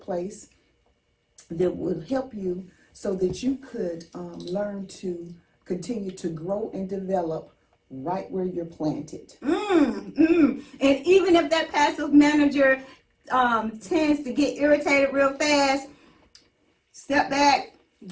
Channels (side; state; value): both; identical; correlation 1.00